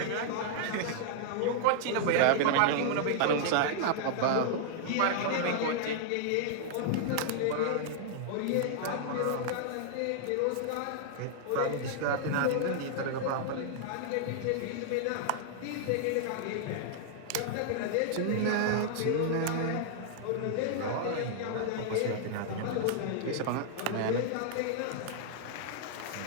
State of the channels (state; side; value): different; both; correlation -0.01